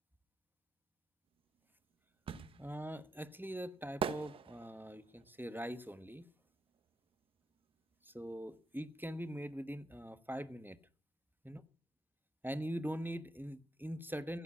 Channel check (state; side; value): normal; both; correlation 0.82